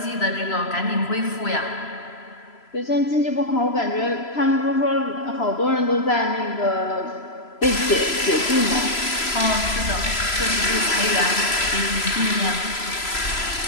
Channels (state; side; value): late; right; 3.0 ms